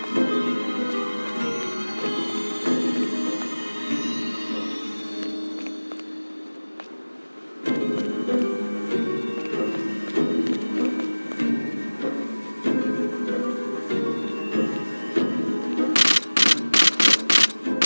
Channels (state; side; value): inverted; both; correlation -1.00